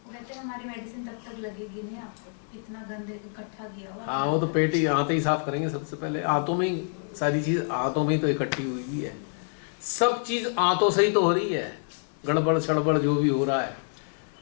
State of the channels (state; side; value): silent; right; 60 dB below the other